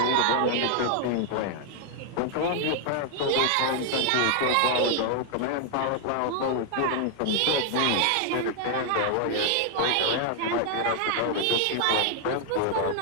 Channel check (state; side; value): different; both; correlation 0.00